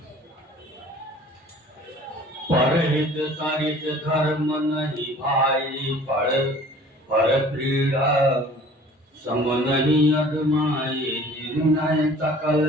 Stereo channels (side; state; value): both; normal; correlation 0.49